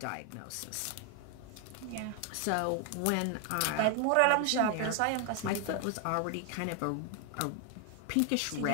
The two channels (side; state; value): both; different; correlation 0.01